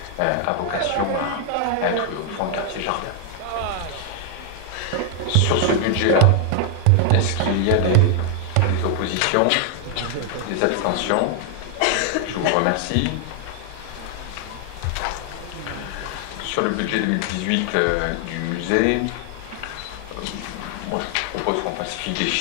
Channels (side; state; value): both; different; correlation 0.00